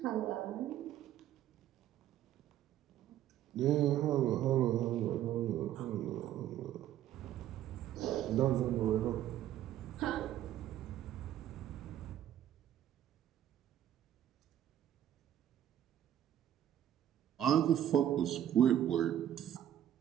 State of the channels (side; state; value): left; quieter; 11.5 dB